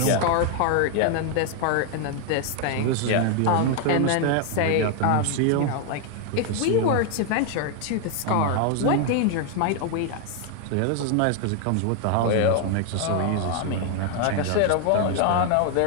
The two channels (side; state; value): both; different; correlation 0.00